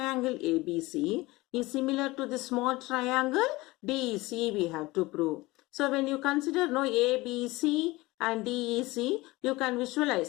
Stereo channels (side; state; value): right; quieter; 20.8 dB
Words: ABC is similar to the small triangle DEC we have to prove. So when you consider ABC and DEC, you can